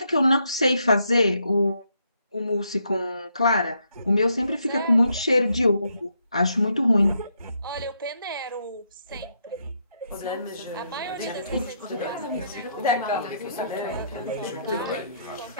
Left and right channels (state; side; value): inverted; both; correlation -0.76